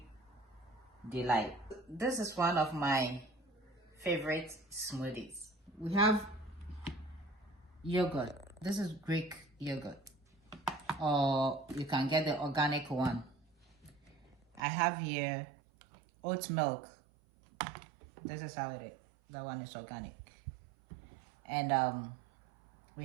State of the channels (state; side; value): drops out; left; at 14.6 s